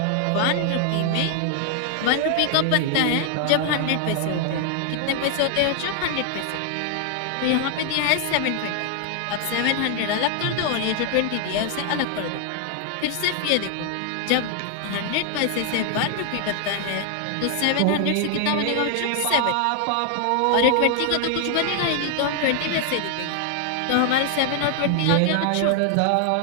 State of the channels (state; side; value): different; both; correlation 0.00